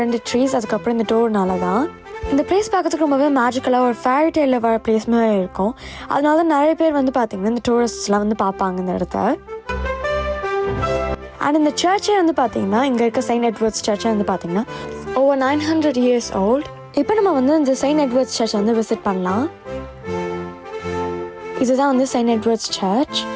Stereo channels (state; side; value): identical; both; correlation 1.00